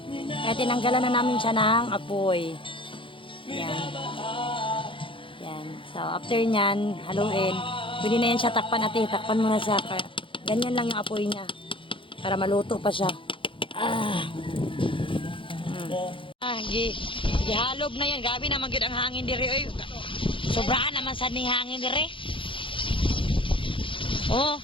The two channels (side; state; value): right; late; 0.25 ms